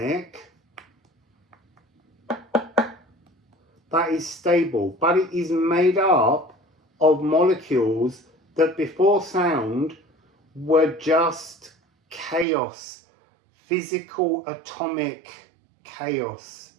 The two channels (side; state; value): left; drops out; at 12.5 s